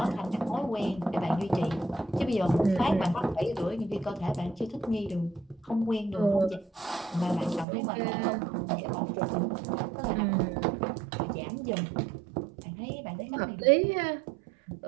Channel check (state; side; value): drops out; left; at 7.7 s